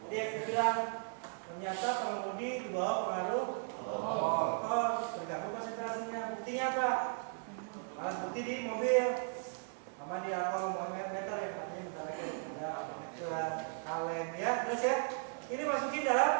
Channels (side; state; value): left; silent; 53 dB below the other